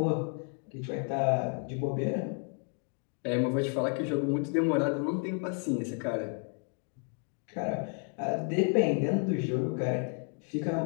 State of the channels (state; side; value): quieter; right; 39.6 dB